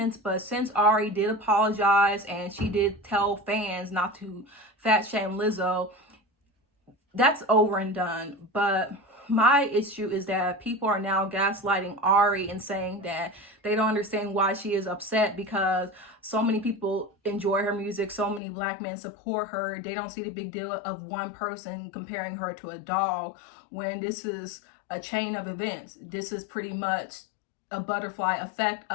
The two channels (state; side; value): drops out; right; at 18.4 s